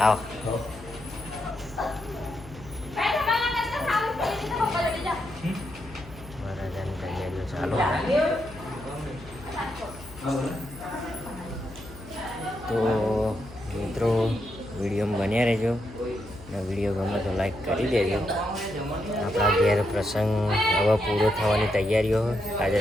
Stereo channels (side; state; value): left; noise; hum, 18 dB below the sound